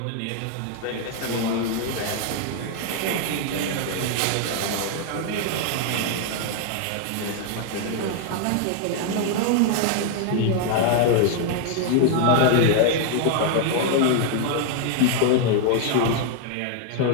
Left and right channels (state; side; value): different; both; correlation 0.00